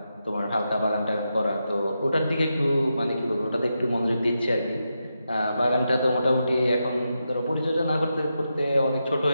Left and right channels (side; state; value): both; inverted; correlation -0.87